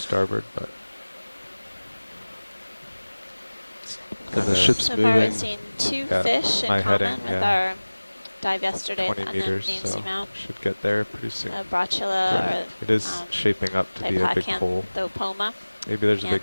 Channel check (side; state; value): both; inverted; correlation -1.00